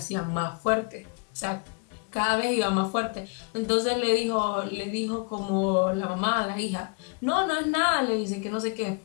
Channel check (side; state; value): right; quieter; 36.2 dB